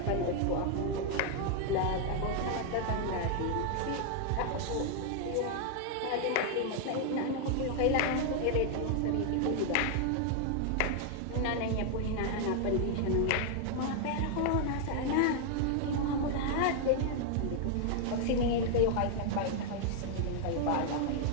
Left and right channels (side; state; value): both; different; correlation 0.00